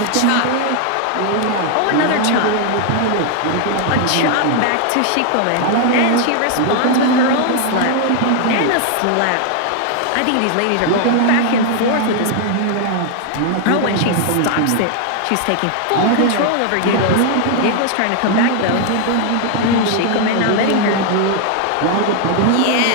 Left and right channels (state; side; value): different; both; correlation 0.00